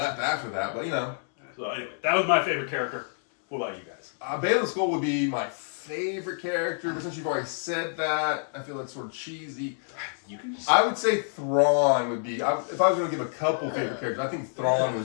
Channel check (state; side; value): silent; right; digital silence